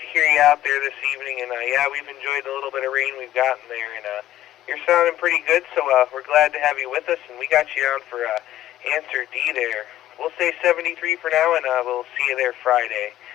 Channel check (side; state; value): right; quieter; 13.5 dB